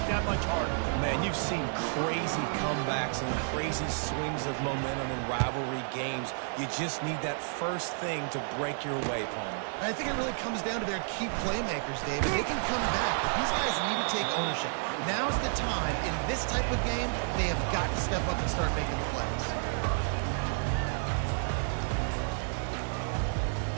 that much harder. Man, you've seen crazy comebacks and crazy swings of momentum in rivalry games. You just need that first thing to break your way, Palmer. I think it really comes down to their key playmakers, David. They can come back, but these guys need to take ownership. Now's the time. In this type of game, they have got to step up and start making plays.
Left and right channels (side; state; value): left; silent; 57 dB below the other